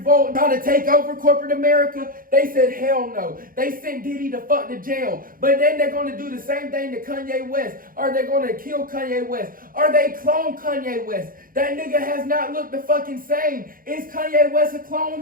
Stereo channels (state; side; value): late; left; 0.41 ms